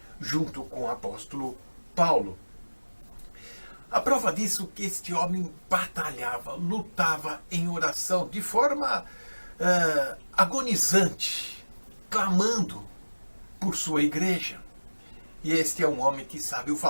junto com o apóstolo Paulo. A prova disso é que este homem batalhava, lutava em oração de forma agonizante, clamando por sua igreja. E este é um homem que sabe o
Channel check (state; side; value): inverted; both; correlation -1.00